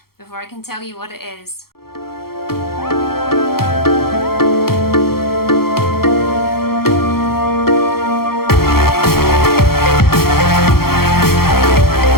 before I can tell you what it is.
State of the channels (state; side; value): late; right; 0.94 ms